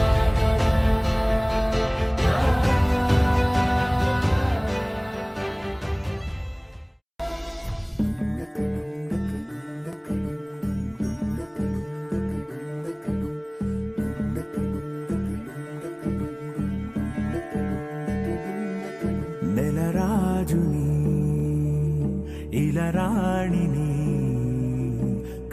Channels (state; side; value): identical; both; correlation 1.00